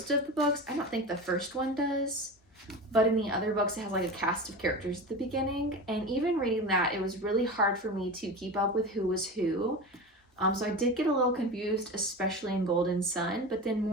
of the books, I don't think the first one does, but in the other books it has like a cast of characters at the beginning. And even reading that, it was really hard for me to keep up with who was who. So I did get a little confused, especially in Golden Sun, but then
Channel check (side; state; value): both; normal; correlation 0.28